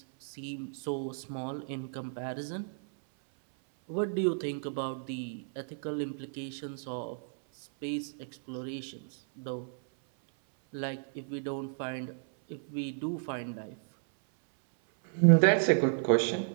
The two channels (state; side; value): silent; left; 56 dB below the other